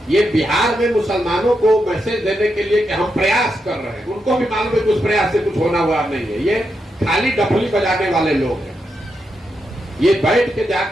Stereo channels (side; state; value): both; normal; correlation 0.84